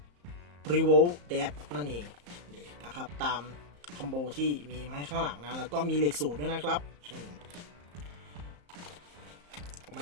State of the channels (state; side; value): late; left; 34 ms